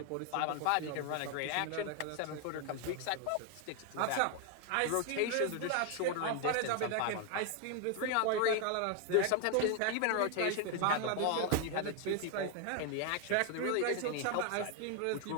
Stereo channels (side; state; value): both; different; correlation 0.01